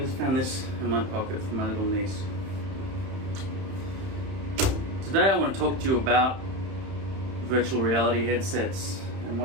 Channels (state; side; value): late; left; 31 ms